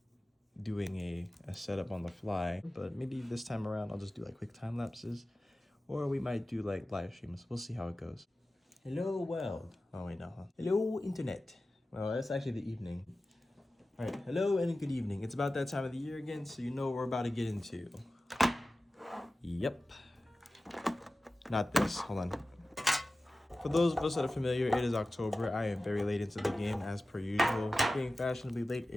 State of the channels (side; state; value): both; normal; correlation 0.95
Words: doing a setup on the fly. But maybe this time around I'll just do like quick time lapses, or we might do like live streams. We'll see how it goes. Hello world. Oh wait, no. Huh? Hello internet. Well, that's actually the evening. All right, hello and good evening. It's about that time of the year again, so you know what we're about to get into. Yep. Not this, hold on. For those of us that are familiar, it is October. I am very late into the game as per usual. Being fashionably late